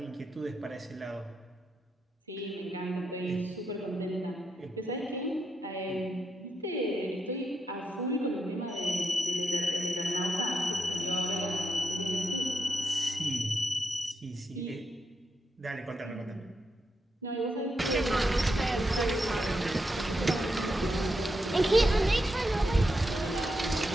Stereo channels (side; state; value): both; normal; correlation 0.83